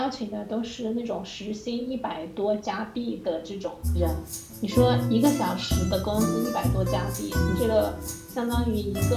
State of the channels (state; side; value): identical; both; correlation 1.00